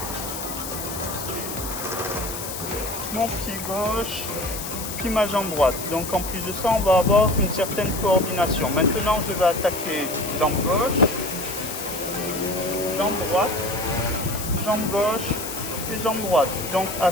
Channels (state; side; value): noise; left; hiss, 7 dB below the sound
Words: mon pied gauche, puis ma jambe droite. Donc en plus de ça, on va avoir une certaine coordination. Maintenant, je vais attaquer jambe gauche, jambe droite, jambe gauche et jambe droite. Donc à